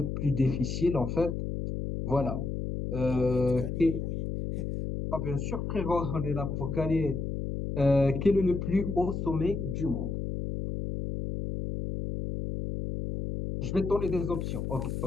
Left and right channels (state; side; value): noise; left; hum, 3 dB below the sound